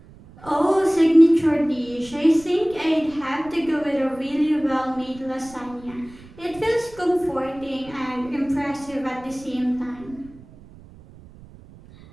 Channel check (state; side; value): noise; right; rumble, 21 dB below the sound